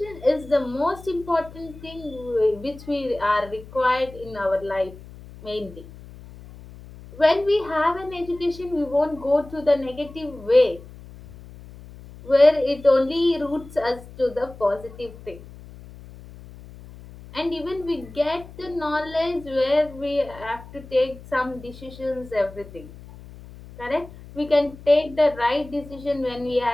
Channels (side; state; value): left; noise; hum, 18 dB below the sound